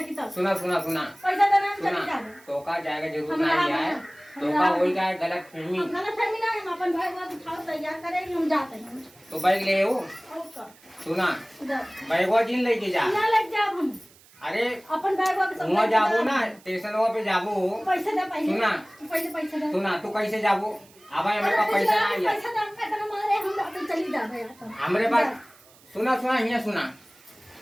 की सुना सुना सुना पैसा देना हम चली सुना जावे तो का जाएगा जरूर हम नहीं रहा- आए हम तो का रहा- हो जाए गलत फहमी हम गलत फहमी ना हम अपन भाई बात उठाओ तैयार करेंगे हम जाते हैं तो बैग ले आओ ओके सुना जा बैगवा जिन लेके जा ना लग जाओ हम अरे अपन बैग वापस वहाँ जाबो ना स्टेशन पे जाबो पैसा दे पैसा सुना पहले पैसा दे सुना तू कैसे जाबो अब हमारे पास पैसा नहीं है पैसा दे हम कहते मारे हम जाते चली जावे अपन हमारे पास सुना सुना यहाँ सुना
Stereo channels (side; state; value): right; noise; hiss, 26 dB below the sound